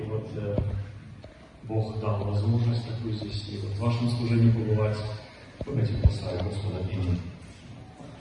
вот Бог дал возможность такую здесь, и вот в вашем служении побывать. Давайте поставим Господа имя.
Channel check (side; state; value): both; identical; correlation 1.00